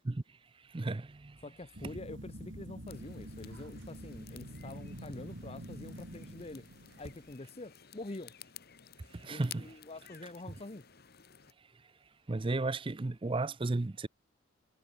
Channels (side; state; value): both; normal; correlation 0.71